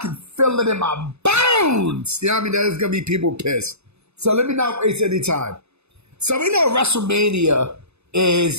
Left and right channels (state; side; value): late; left; 0.80 ms